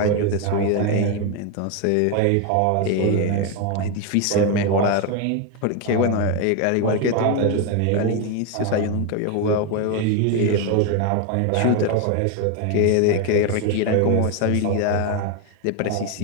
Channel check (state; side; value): different; both; correlation 0.01